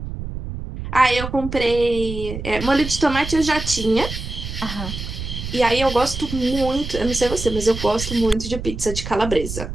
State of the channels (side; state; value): right; noise; rumble, 7 dB below the sound